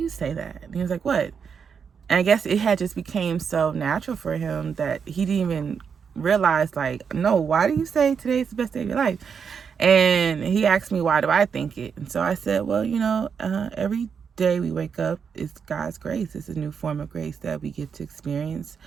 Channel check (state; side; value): quieter; left; 6.5 dB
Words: say that?" And he was like, "What?" And I guess it had just became so natural for him that he didn't even realize, like, no, why do you say today's the best day of your life? And he asked me, why do I think it? And so I said, well, every day we wake up, it's God's grace. It's a new form of grace that we get to experience.